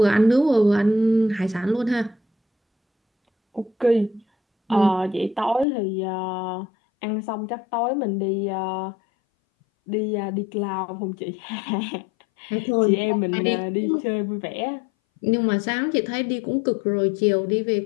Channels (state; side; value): drops out; right; at 5.7 s